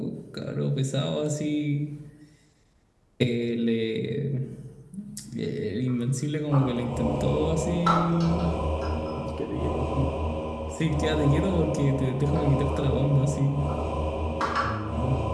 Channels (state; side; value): identical; both; correlation 1.00